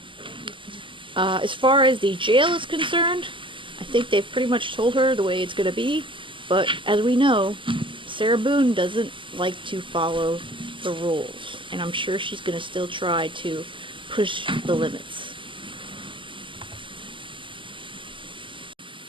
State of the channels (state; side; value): late; left; 0.25 ms